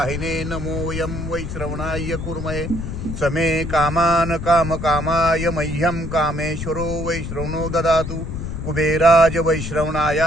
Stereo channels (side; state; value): left; noise; rumble, 6 dB below the sound